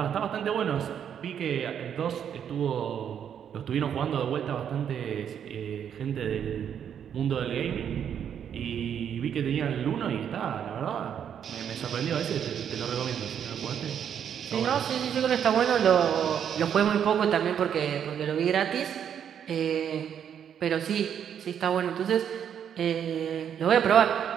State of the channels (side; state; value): left; quieter; 8.6 dB